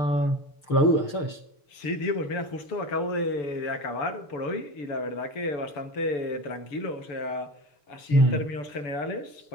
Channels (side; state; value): right; late; 6.9 ms